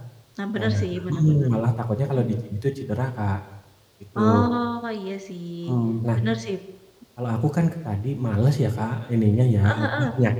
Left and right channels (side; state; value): both; identical; correlation 1.00